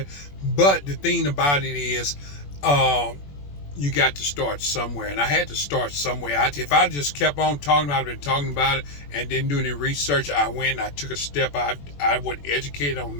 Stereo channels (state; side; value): late; right; 21 ms